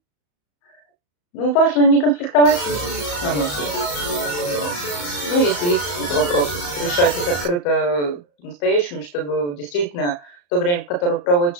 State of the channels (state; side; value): late; right; 34 ms